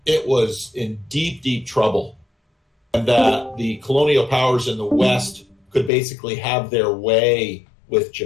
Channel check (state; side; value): drops out; right; at 5.9 s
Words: it was in deep, deep trouble, and that the colonial powers in the West could basically have their way with